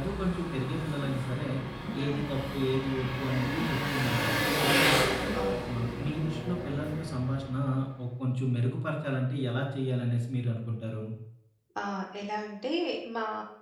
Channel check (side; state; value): both; identical; correlation 1.00